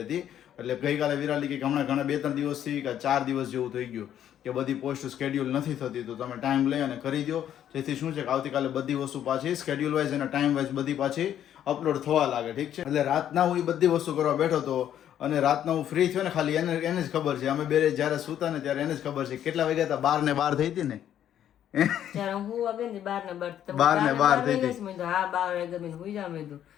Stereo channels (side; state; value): right; quieter; 10.5 dB